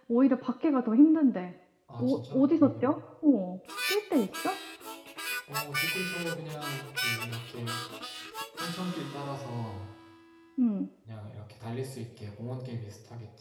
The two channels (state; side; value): identical; both; correlation 1.00